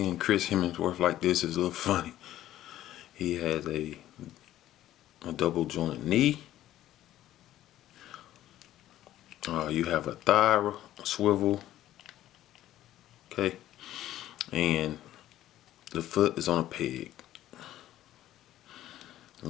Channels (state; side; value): quieter; right; 13.4 dB